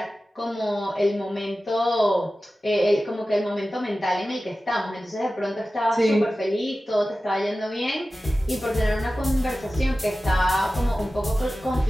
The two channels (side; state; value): both; normal; correlation 0.95